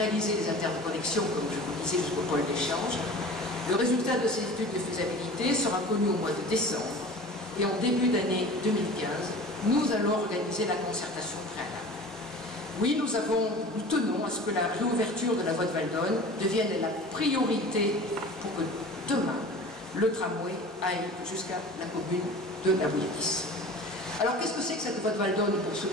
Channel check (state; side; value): normal; both; correlation 0.39